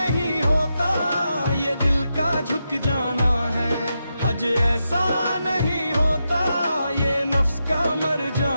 होता ये दिल का झुक जाना है, हज ऐसा नहीं होता ये नफ्स का मर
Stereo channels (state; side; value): inverted; both; correlation -0.86